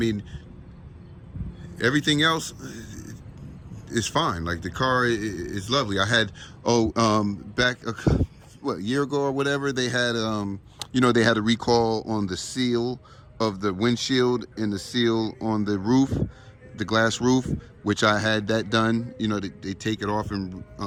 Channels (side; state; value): both; identical; correlation 1.00